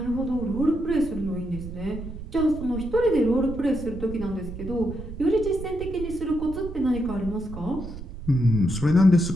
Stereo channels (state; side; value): noise; right; rumble, 10 dB below the sound